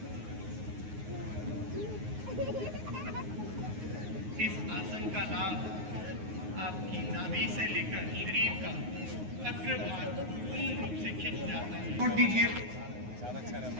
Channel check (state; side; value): late; left; 9.5 ms